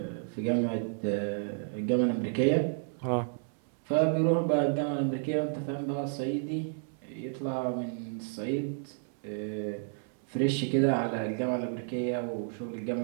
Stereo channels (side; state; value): left; silent; 57 dB below the other